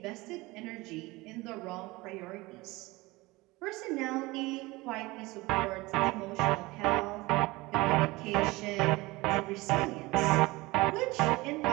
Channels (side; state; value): left; quieter; 21.7 dB